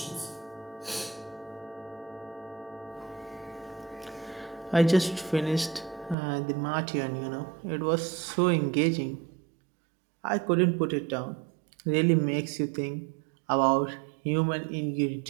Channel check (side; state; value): left; drops out; at 6.2 s